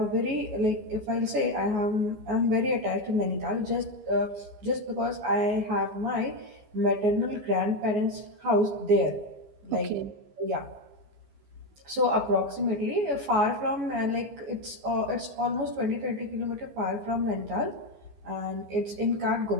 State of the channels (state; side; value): late; left; 14 ms